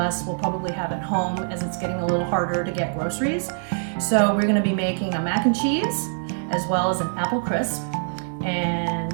will probably have at home as it's getting a little harder to get groceries. So we're going to be making a mac and cheese as well as an apple crisp, and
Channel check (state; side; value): silent; left; digital silence